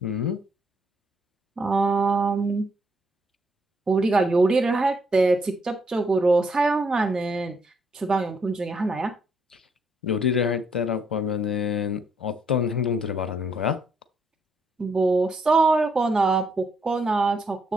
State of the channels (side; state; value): both; normal; correlation 0.73